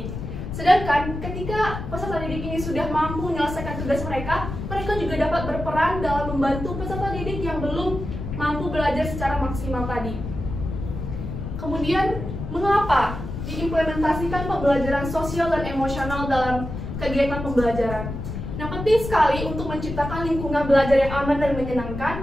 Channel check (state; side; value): noise; left; rumble, 7 dB below the sound